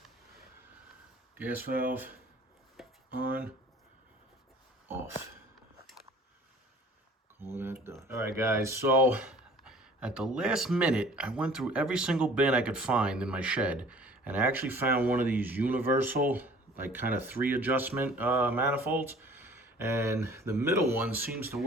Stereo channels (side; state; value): both; normal; correlation 0.50